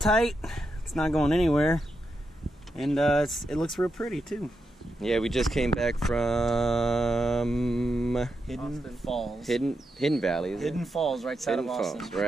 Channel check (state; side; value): normal; both; correlation 0.85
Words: It's not going anywhere, and it looks real pretty too. Yeah, we just came back from Hidden Falls. Hidden Valley, is Hidden it? Falls, right side Hidden of Austin. Falls,